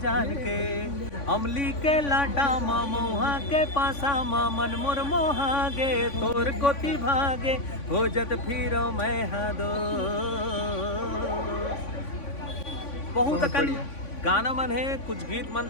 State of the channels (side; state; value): right; late; 3.5 ms